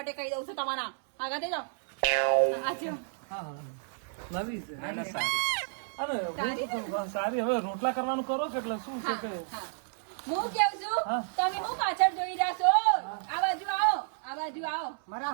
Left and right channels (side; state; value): left; silent; 57 dB below the other